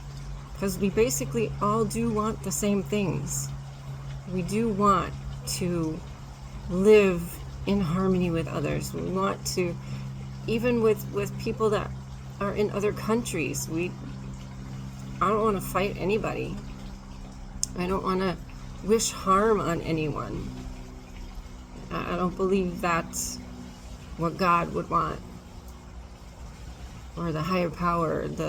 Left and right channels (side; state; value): both; identical; correlation 1.00